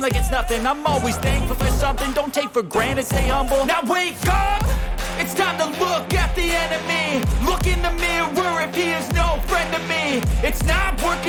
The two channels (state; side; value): identical; both; correlation 1.00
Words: it's nothing. I'm always thankful for something. Don't take for granted, stay humble. Now wake up! It's time to look at the enemy. Look in the mirror if he is no friend to me. It's not